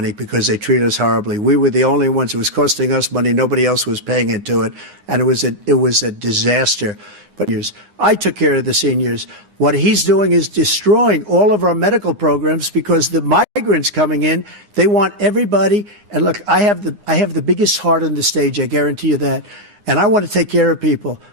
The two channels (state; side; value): late; left; 9.7 ms